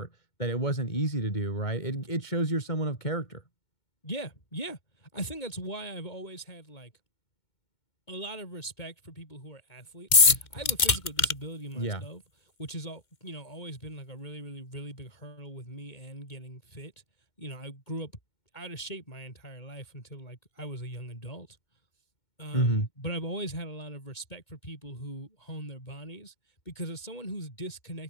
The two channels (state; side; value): late; right; 2.2 ms